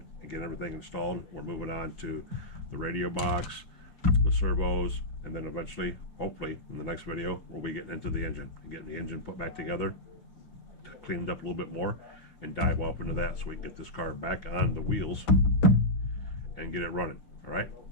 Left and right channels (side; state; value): right; late; 6.1 ms